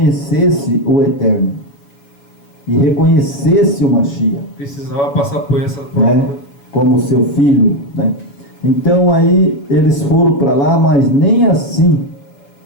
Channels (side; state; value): right; late; 7.1 ms